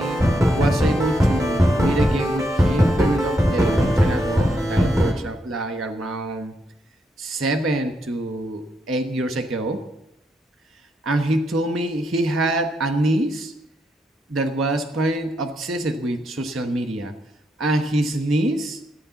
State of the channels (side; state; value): both; normal; correlation 0.79